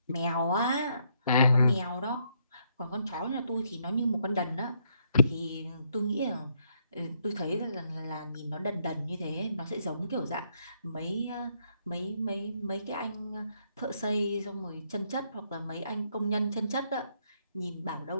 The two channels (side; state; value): both; inverted; correlation -0.73